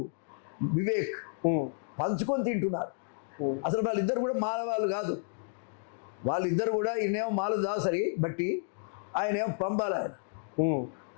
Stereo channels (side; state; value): right; silent; digital silence